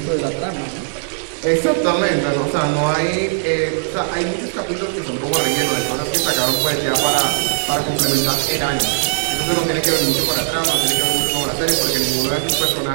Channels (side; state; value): left; silent; digital silence